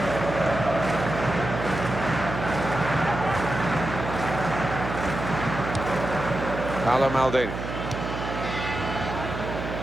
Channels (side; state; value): right; noise; hum, 6 dB below the sound